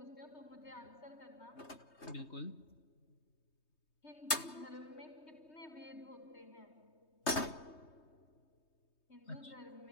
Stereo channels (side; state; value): right; late; 3.2 ms